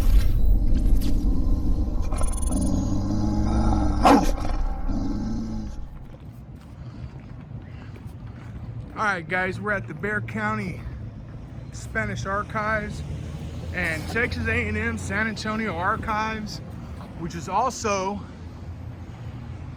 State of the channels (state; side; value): identical; both; correlation 1.00